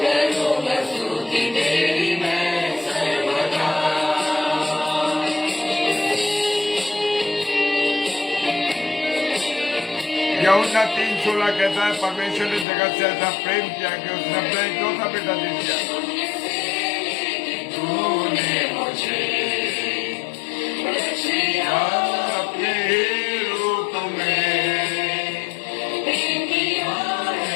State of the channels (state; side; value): drops out; right; at 12.7 s